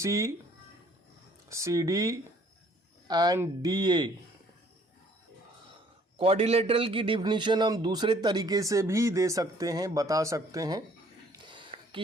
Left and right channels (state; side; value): normal; both; correlation 0.59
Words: CD and DA. Quadrilateral की डिफिनीशन हम दूसरे तरीके से भी दे सकते हैं, बता सकते हैं